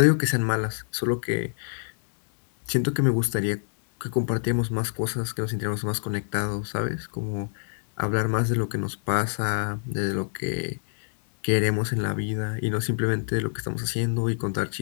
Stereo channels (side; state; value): right; silent; 58 dB below the other